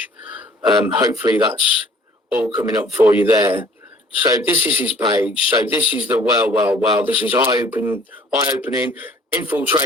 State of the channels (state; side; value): normal; both; correlation 0.54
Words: Hopefully that's all coming up for you there. So this is his page. So this is the well. This is eye-opening.